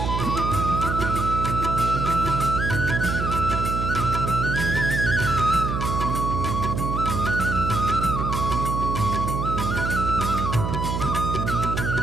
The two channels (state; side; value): noise; right; hum, 2 dB below the sound